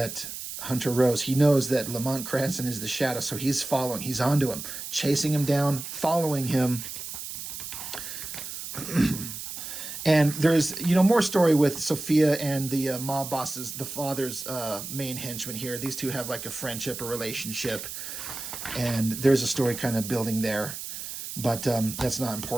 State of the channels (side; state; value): right; noise; hiss, 8 dB below the sound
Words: Hunter Rose, he knows that Lamont Cranston is the Shadow, so he's following. He's onto him, chasing him down, following him. And there's, more story with Sophia and the mob bosses, the father's main henchman here. These two have like a friendship or relationship. And there's a story kind of building there. But that's not